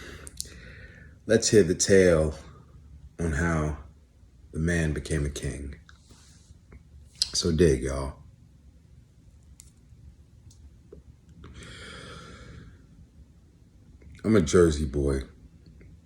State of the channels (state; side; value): identical; both; correlation 1.00